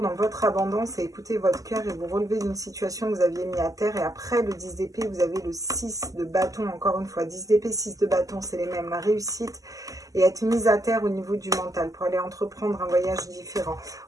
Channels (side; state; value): left; late; 0.17 ms